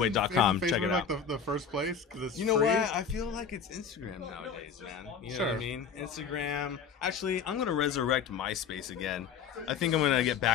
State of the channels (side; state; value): right; quieter; 6.6 dB